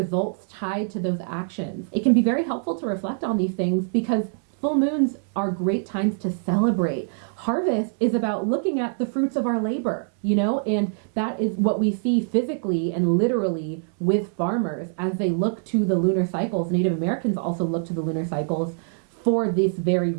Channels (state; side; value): silent; left; digital silence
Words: tied to those actions? It can be very helpful to reflect on these things because full moons are great times to celebrate. Harvest is about looking at the fruits of our labor, and that is what we see physically and literally with farmers as they look to the lunar cycles. Native Americans also look to the lunar cycles for this very